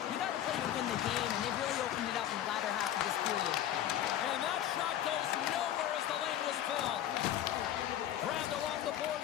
You got to play to win the game, and they've really opened it up in the latter half of this period. And that shot goes nowhere as the lane was filled. Grabbed along the boards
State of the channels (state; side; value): quieter; right; 11.6 dB